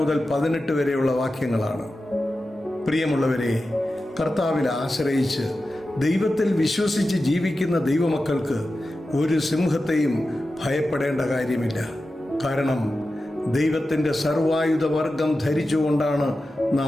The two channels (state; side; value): normal; both; correlation 0.92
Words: 18 വരെയുള്ള വാക്യങ്ങളാണ്. പ്രിയമുള്ളവരെ, കർത്താവിൽ ആശ്രയിച്ച് ദൈവത്തിൽ വിശ്വസിച്ച് ജീവിക്കുന്ന ദൈവമക്കൾക്ക് ഒരു സിംഹത്തെയും ഭയപ്പെടേണ്ട കാര്യമില്ല. കാരണം ദൈവത്തിൻ്റെ സർവായുധവർഗം ധരിച്ചുകൊണ്ടാണ്